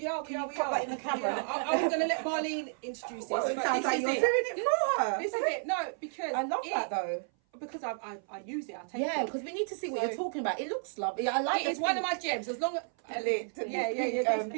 are. Put that in the camera. I'm going to let Marleen introduce this. Well, it but sounds this like is you're it. doing it for her. This is it. No, because I love that though. Because I use it. I take Yeah, it. because we need to see what So- you're talking about. It looks lovely. I like It's one of my gems. As long as the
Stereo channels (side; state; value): left; silent; 56 dB below the other